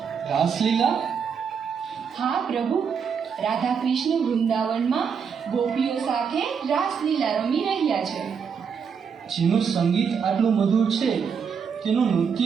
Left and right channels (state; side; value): quieter; left; 6.6 dB